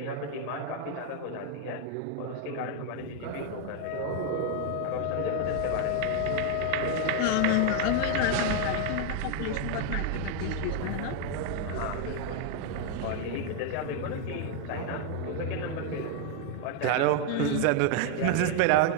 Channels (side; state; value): both; different; correlation 0.00